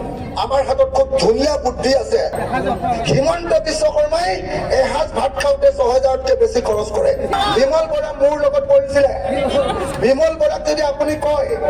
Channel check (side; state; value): both; identical; correlation 1.00